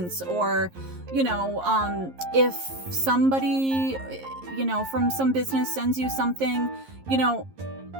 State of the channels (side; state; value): left; late; 11 ms